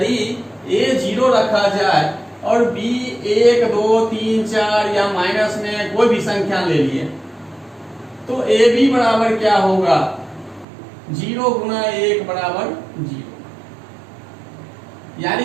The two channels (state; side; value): drops out; left; at 10.7 s